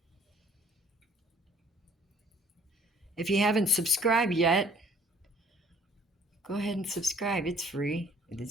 If you haven't subscribed yet, go ahead and subscribe. It's free.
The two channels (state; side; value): normal; both; correlation 0.57